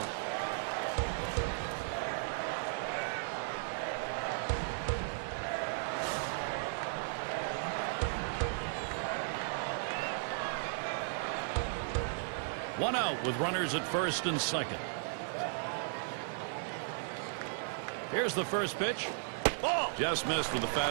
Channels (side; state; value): left; silent; digital silence